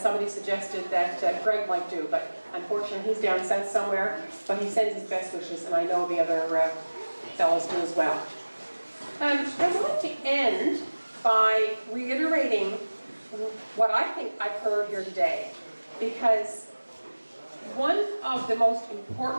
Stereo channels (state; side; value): inverted; both; correlation -1.00